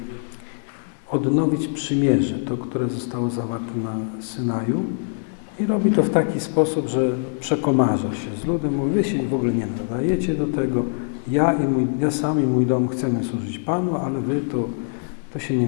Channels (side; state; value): right; silent; 58 dB below the other